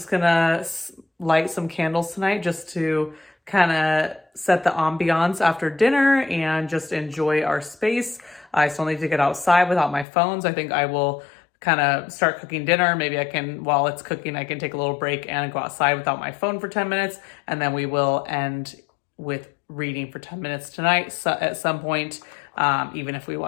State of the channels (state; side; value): drops out; right; at 10.1 s